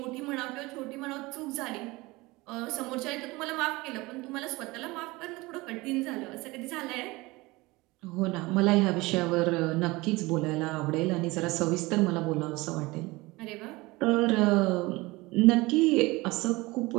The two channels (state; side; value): quieter; left; 22.1 dB